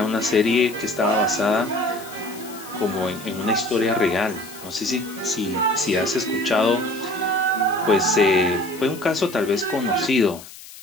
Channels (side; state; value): left; noise; hiss, 17 dB below the sound